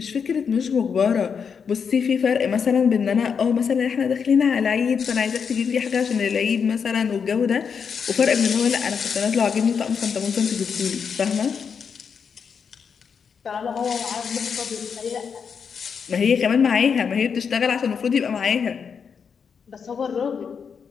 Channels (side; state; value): right; quieter; 6.5 dB